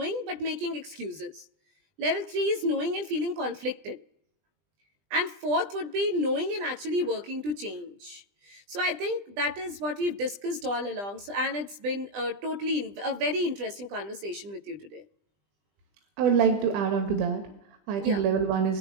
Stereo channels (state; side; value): late; left; 20 ms